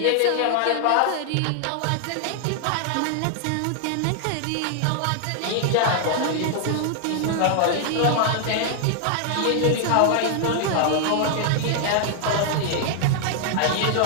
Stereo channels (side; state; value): both; different; correlation 0.00